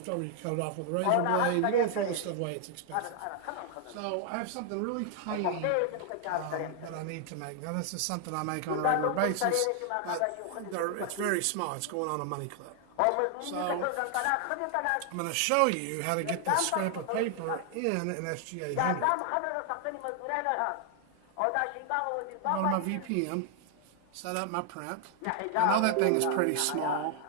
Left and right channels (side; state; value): both; different; correlation 0.00